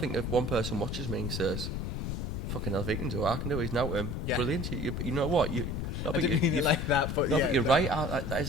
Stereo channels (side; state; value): left; noise; rumble, 3 dB below the sound